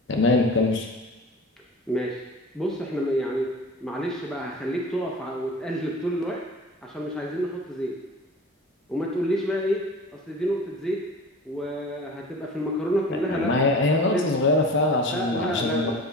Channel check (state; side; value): normal; both; correlation 0.38